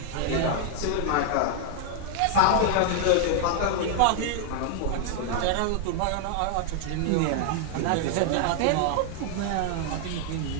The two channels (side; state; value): both; different; correlation -0.01